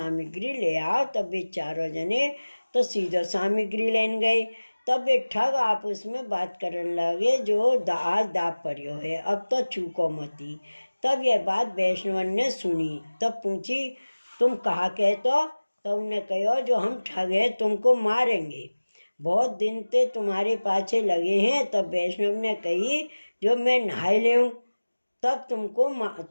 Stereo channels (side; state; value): both; inverted; correlation -1.00